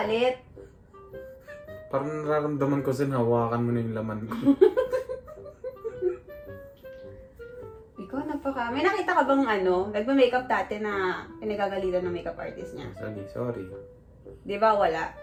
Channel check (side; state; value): both; identical; correlation 1.00